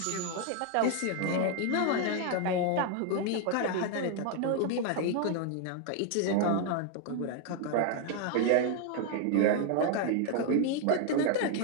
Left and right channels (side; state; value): both; different; correlation 0.01